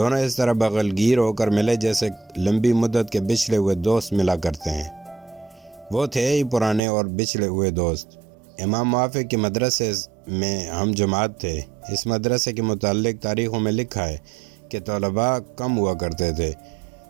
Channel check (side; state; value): left; drops out; at 6.8 s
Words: اس طرح بغلگیر ہو کر ملے جیسے لمبی مدت کے بچھڑے ہوئے دوست ملا کرتے ہیں۔ وہ تھے ہی پرانے اور بچھڑے ہوئے دوست۔ امام موافق کے مدرسے میں ہم جماعت تھے۔ اس مدرسے کے متعلق تاریخوں میں لکھا ہے کہ طلباء کم ہوا کرتے تھے